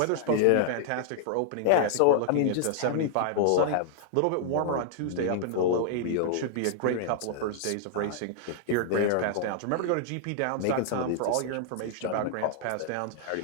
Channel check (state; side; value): different; both; correlation 0.00